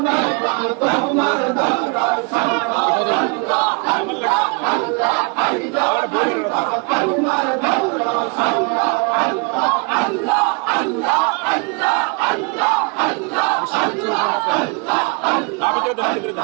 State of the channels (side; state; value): left; quieter; 33.0 dB